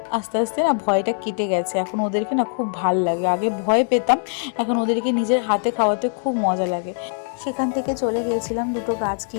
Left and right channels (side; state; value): right; silent; 59 dB below the other